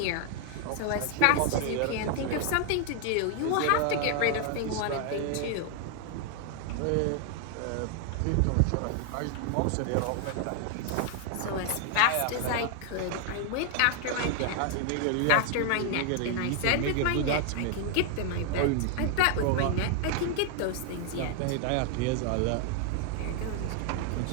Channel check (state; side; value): different; both; correlation 0.00